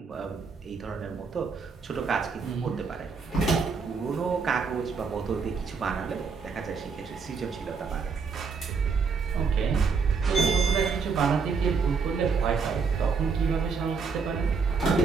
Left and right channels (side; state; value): left; quieter; 5.2 dB